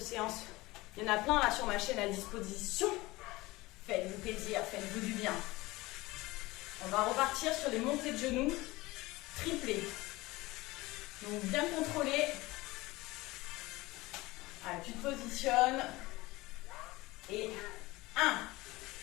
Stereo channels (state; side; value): quieter; right; 20.5 dB